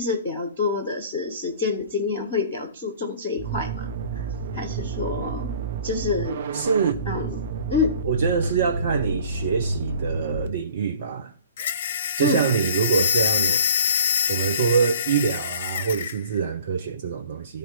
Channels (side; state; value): both; inverted; correlation -0.47